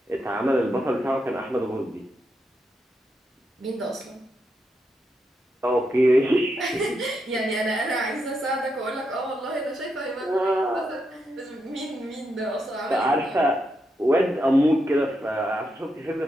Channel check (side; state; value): both; normal; correlation 0.83